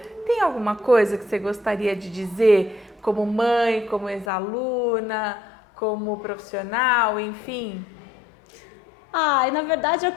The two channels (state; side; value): drops out; right; at 4.3 s